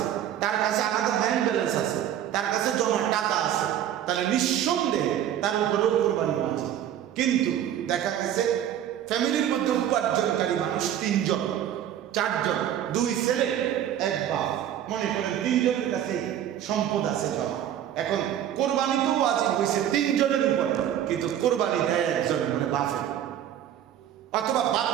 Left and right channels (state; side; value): quieter; left; 10.7 dB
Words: তার কাছে আলাদা ব্যাংক ব্যালেন্স আছে, তার কাছে জমা টাকা আছে, তাহলে নিঃসন্দেহে তার উপরেও কোরবানি আছে। কিন্তু দেখা গেছে ফ্যামিলির মধ্যে উপার্জনকারী মানুষ 3 জন 4 জন, 2 ছেলে 1 বাপ, মনে করেন 3 জনের কাছে সম্পদ আছে জমা। এখন কোরবানি তো ওয়াজিব হয়েছে 3 জনের উপরে, কিন্তু কোরবানি দেয় একজন, মানে বাপের, অথবা বাপ